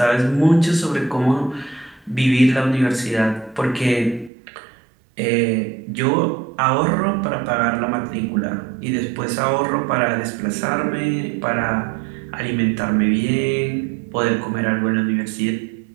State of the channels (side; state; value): left; drops out; at 4.3 s